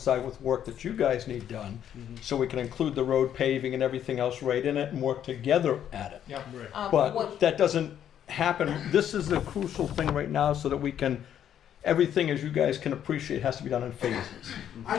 with work that you guys need done, so we can include the road paving and everything else right in it and work together at it. Yep. But that doesn't happen. This is the crucial thing right now, so that we can, everything, as you guys can appreciate, has to be done in phases. I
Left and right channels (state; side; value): quieter; right; 10.0 dB